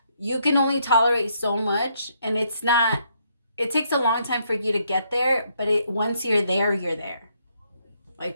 you can only tolerate so much, and it's not, it takes a long time for you to get there, but once you're there, you're there.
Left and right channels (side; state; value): both; inverted; correlation -0.73